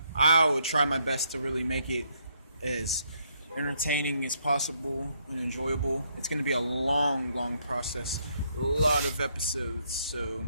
I will try my best to really make it as entertaining as possible and enjoyable. It's going to be a long process, a lot of episodes, so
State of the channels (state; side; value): inverted; both; correlation -0.73